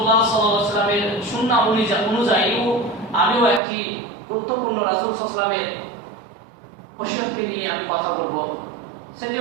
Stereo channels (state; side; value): drops out; left; at 3.6 s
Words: সাল্লাল্লাহু আলাইহি ওয়াসাল্লামের সুন্নাহ অনুযায়ী আমিও একটি গুরুত্বপূর্ণ রাসূল সাল্লাল্লাহু আলাইহি ওয়াসাল্লামের ওসিয়তকে নিয়ে আমি কথা বলবো। সেটি